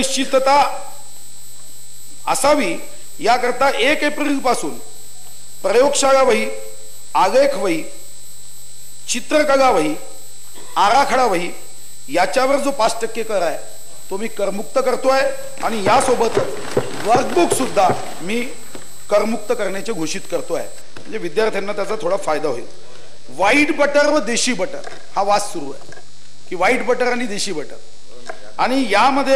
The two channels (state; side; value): identical; both; correlation 1.00